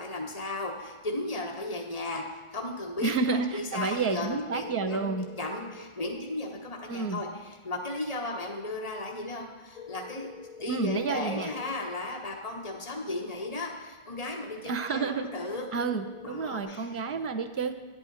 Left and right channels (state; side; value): late; right; 1.4 ms